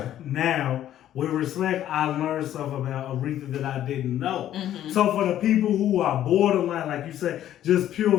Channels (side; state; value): right; quieter; 11.8 dB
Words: Now, with Respect, I learned stuff about Aretha that I didn't know. Mm-hmm. So for the people who are borderline, like you said, just pure